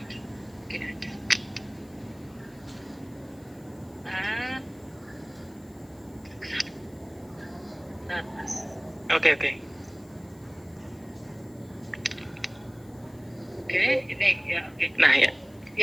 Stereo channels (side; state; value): left; noise; hiss, 27 dB below the sound